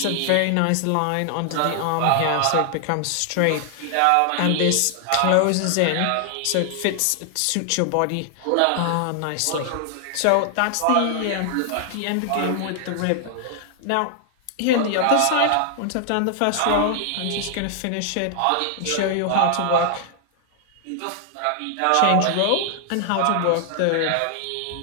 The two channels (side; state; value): both; different; correlation 0.00